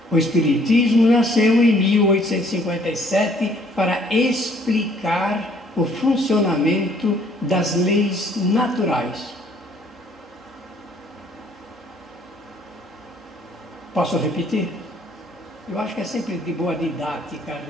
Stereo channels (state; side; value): normal; both; correlation 0.61